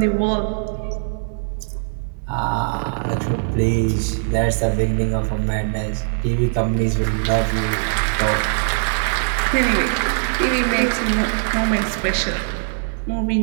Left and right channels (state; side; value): silent; left; 64 dB below the other